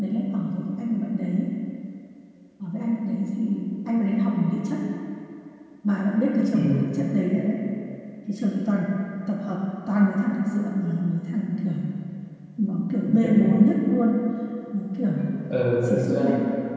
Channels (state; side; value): identical; both; correlation 1.00